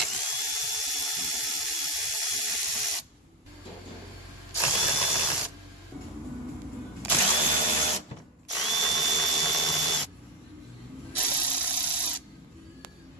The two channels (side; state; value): both; normal; correlation 0.10